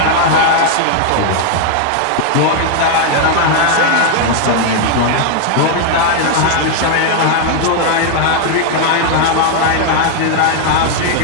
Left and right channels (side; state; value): both; different; correlation 0.00